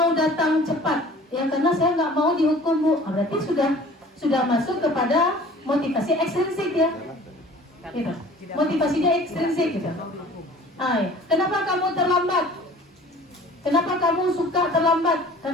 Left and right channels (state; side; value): normal; both; correlation 0.47